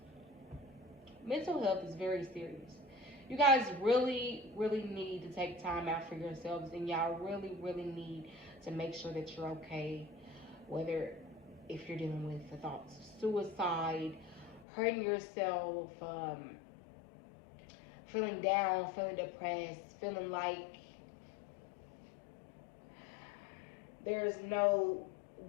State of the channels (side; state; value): right; drops out; at 14.7 s